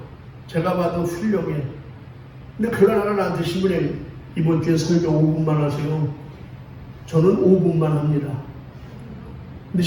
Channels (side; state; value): both; identical; correlation 1.00